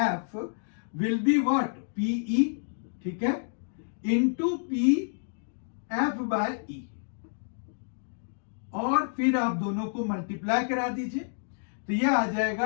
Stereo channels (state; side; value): silent; right; digital silence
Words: will be what, P E, ठीक है, into P F by E, और फिर आप दोनों को मल्टीप्लाई करा दीजिए, तो यह आ